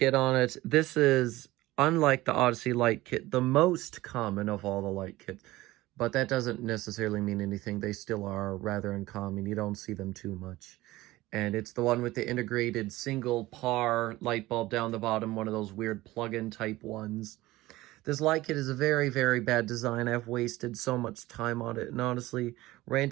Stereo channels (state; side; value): quieter; left; 18.1 dB